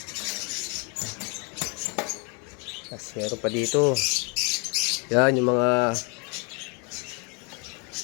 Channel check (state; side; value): quieter; right; 33.7 dB